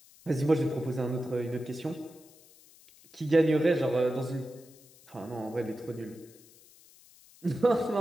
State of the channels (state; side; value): noise; left; hiss, 25 dB below the sound